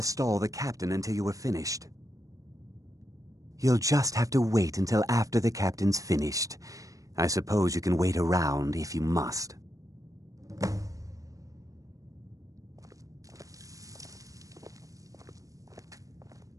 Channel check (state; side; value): late; left; 0.16 ms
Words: stall the captain until you were finished. You'll just have to wait until after the captain's finished. I suppose you can wait around if you must.